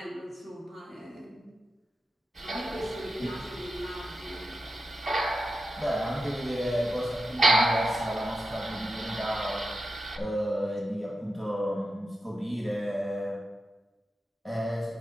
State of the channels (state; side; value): normal; both; correlation 0.89